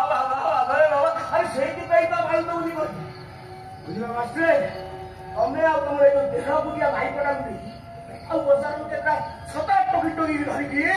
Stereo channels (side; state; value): both; identical; correlation 1.00